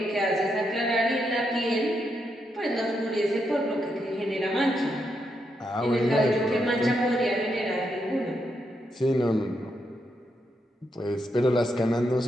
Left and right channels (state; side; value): normal; both; correlation 0.81